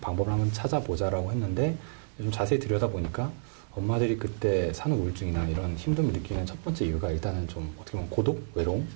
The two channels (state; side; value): silent; left; 58 dB below the other